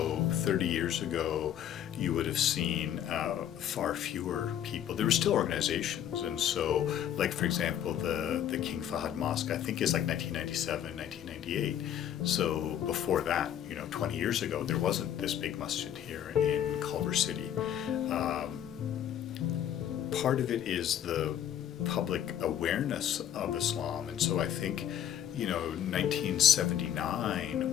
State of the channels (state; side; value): quieter; right; 10.4 dB